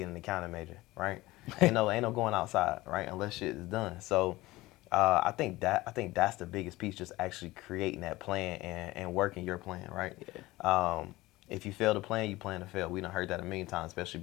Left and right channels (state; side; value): quieter; right; 19.1 dB